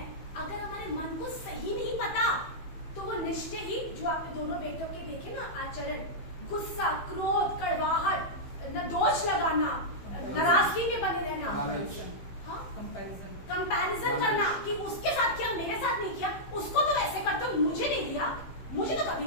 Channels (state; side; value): late; right; 15 ms